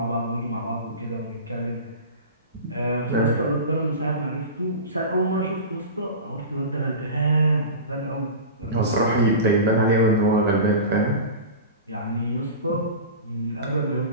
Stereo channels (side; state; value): both; inverted; correlation -0.31